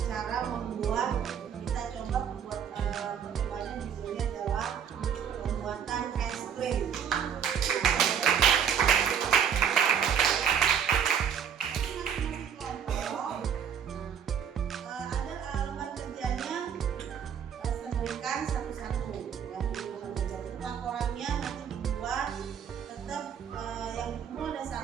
cara membuat, kita coba membuat percobaan judulnya adalah pembuatan es krim.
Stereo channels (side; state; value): left; quieter; 8.0 dB